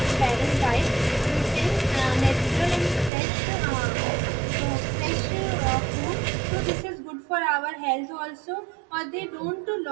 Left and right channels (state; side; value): drops out; left; at 3.1 s